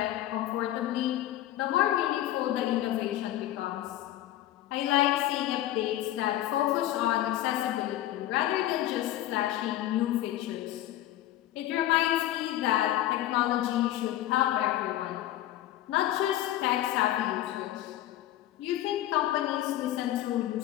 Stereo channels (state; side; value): quieter; right; 13.8 dB